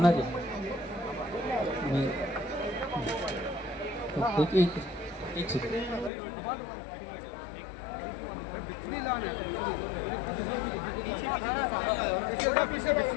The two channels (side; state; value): right; drops out; at 6.1 s